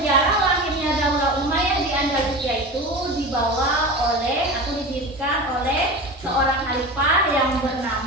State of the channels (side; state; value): both; normal; correlation 0.30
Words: lahirnya Daulah Umayyah di Andalusia itu dibawa oleh atau didirikan oleh seorang khalifah yang